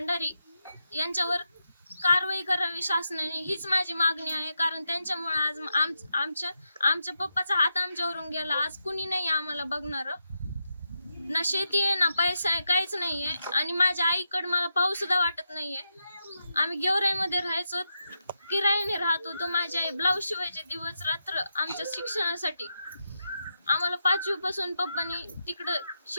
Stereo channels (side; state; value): both; inverted; correlation -0.86